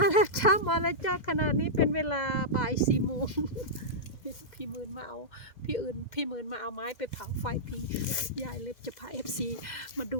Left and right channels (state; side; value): late; right; 2.0 ms